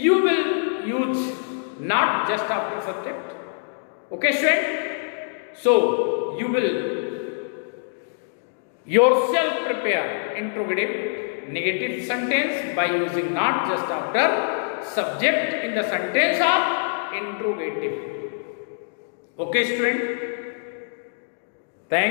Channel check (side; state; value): right; silent; digital silence